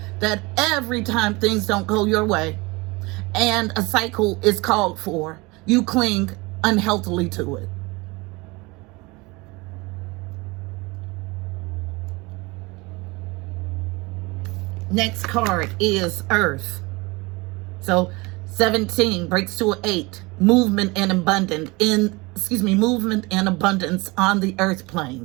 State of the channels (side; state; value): left; quieter; 24.7 dB